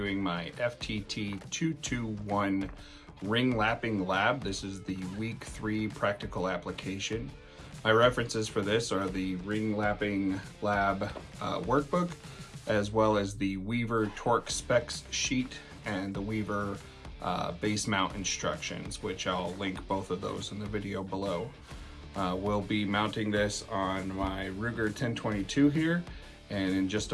my FTT 221 ring lapping lab. This is the week 3 practical application. My references for this are the ring lapping lab workbook, as well as the Weaver torque specs sheet and the Weaver base mount instructions, which I'll link both of those in the video below. We'll be mounting this on my Ruger 1022 here, and in just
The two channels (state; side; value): identical; both; correlation 1.00